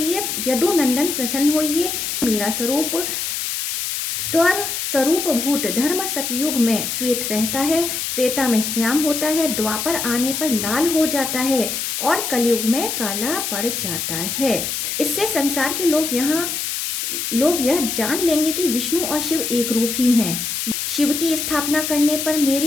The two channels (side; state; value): left; noise; hiss, 3 dB below the sound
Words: यदुनंदन प्रसन्न होइए। मेरा स्वरूप स्वर स्वरूप भूत धर्म सतयुग में श्वेत रहता है, त्रेता में श्याम होता है, द्वापर आने पर लाल हो जाता है और कलयुग में काला पड़ जाता है। इससे संसार के लोग यह जान लेंगे कि विष्णु और शिव एक रूप ही हैं। शिव की स्थापना करने पर मेरी